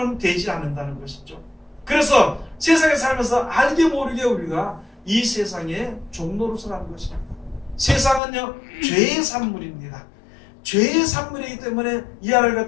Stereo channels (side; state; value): right; drops out; at 8.2 s